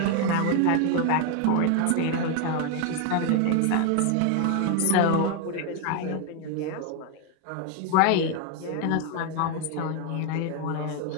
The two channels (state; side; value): different; both; correlation 0.01